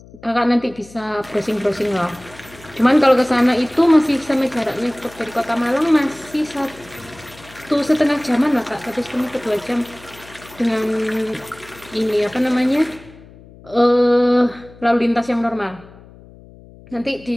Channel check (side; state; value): left; noise; hum, 22 dB below the sound